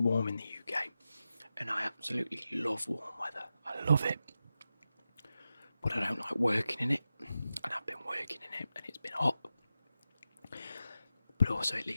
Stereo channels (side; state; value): both; inverted; correlation -0.91